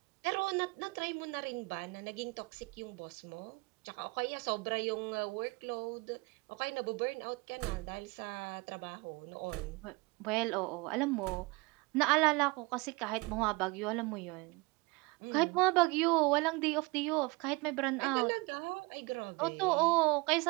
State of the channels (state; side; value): quieter; left; 25.9 dB